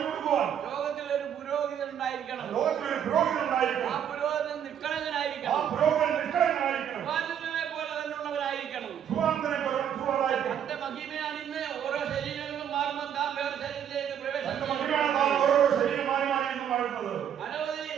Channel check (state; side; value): quieter; left; 9.1 dB